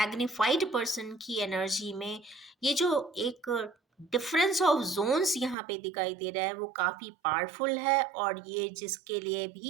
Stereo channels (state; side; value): drops out; left; at 5.6 s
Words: पर्सन की एनर्जी में, ये जो एक डिफरेंस ऑफ जोन्स यहाँ पे दिखाई दे रहा है वो काफ़ी पावरफुल है। और ये जिसके लिए